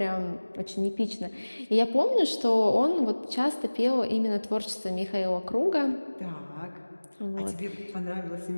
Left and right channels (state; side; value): inverted; both; correlation -1.00